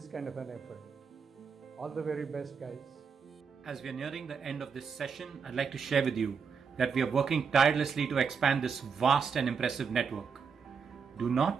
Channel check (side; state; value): left; quieter; 6.0 dB